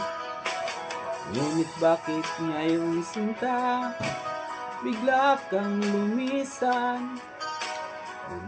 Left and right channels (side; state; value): both; identical; correlation 1.00